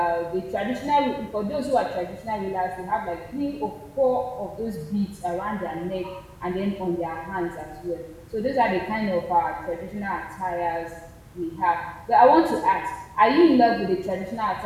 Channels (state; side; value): identical; both; correlation 1.00